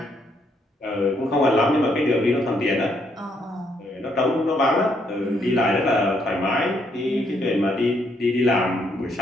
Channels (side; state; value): both; normal; correlation 0.73